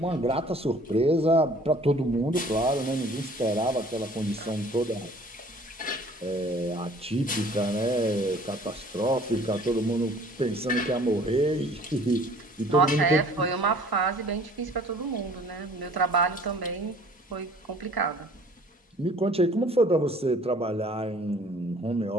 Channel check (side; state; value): both; normal; correlation 0.52